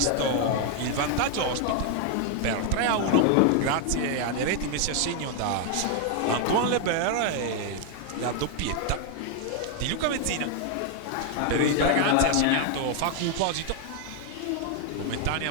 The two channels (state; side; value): different; both; correlation 0.00